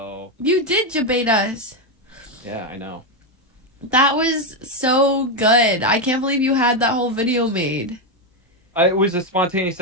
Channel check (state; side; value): normal; both; correlation 0.07